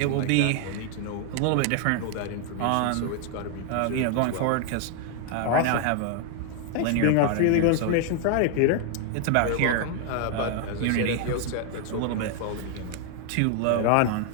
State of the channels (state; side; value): different; both; correlation 0.00